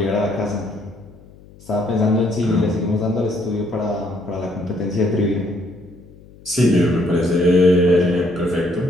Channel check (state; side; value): noise; left; hum, 23 dB below the sound